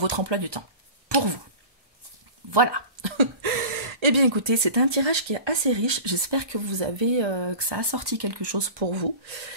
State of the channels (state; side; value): late; left; 1.2 ms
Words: emploi du temps, pour vous. Voilà. Eh bien écoutez, c'est un tirage qui est assez riche, j'espère que que ça a sorti quelque chose pour vous.